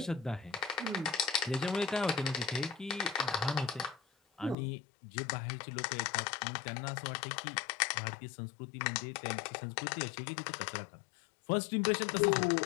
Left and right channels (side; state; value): right; drops out; at 4.5 s